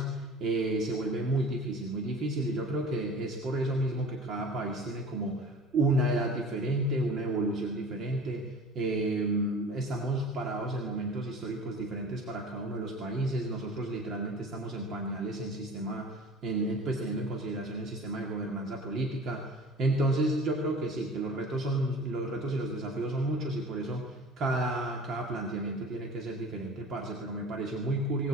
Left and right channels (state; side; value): normal; both; correlation 0.41